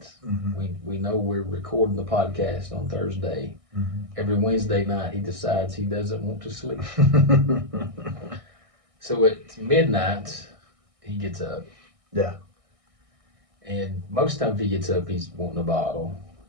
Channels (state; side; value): late; left; 1.6 ms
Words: Mm-hmm. We know we're recording the podcast on Thursday. Mm-hmm. Every Wednesday night, he decides he doesn't want to sleep. So at midnight, he gets up. Yeah. And most times he gets up, he's wanting a bottle.